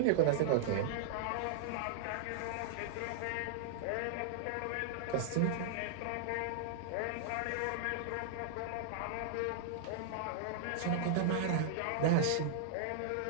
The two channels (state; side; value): different; both; correlation -0.01